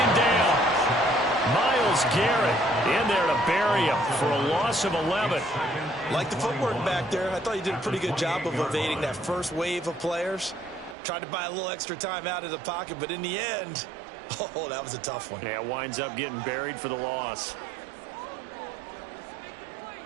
down. Myles Garrett in there to bury him for a loss of 11. Like the footwork back there, I thought he did a pretty good job of evading that first wave of players. Tried to buy a little extra time out of the pocket, but in the end, Oh, that was a tough one. Yeah, winds up getting buried for the loss.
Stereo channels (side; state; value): left; drops out; at 11.0 s